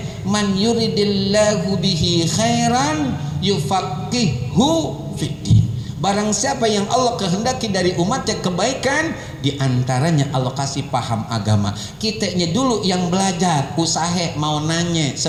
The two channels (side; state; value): both; identical; correlation 1.00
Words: Man yuridillahu bihi khairan yufaqihu fiddin. Barang siapa yang Allah kehendaki dari umatnya kebaikan, diantaranya Allah kasih paham agama. Kitanya dulu yang belajar, usaha mau nanya,